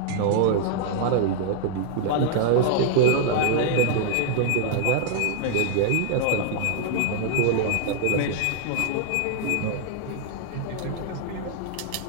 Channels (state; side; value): different; both; correlation -0.01